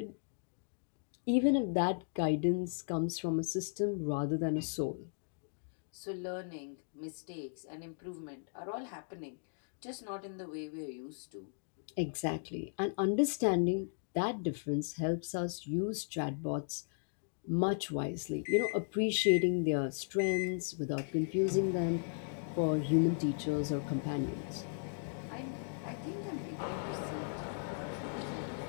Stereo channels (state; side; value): silent; right; digital silence